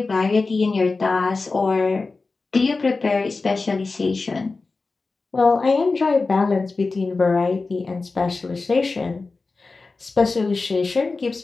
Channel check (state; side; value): quieter; right; 3.9 dB